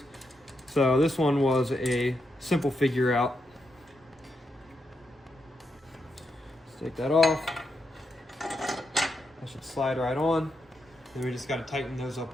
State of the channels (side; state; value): both; normal; correlation 0.83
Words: So this one was a simple figure out. Let's take that off. That should slide right on. Then we just got to tighten those